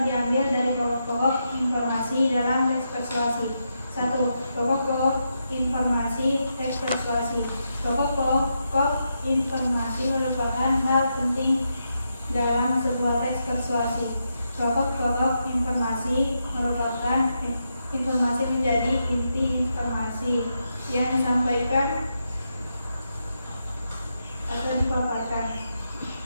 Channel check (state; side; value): inverted; both; correlation -0.84